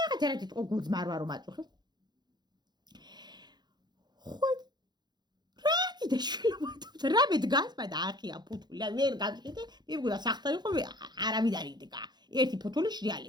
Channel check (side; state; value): left; late; 0.21 ms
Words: რა თქო გუძმარვა რომ აწუხებს ხო რა კიდე შვილობთ რა მე დგას და ახია ფუთული და ვერ გაგიხდე მე მგონია სახტარი ხო არავინ არ იდგა ერთი ფუთული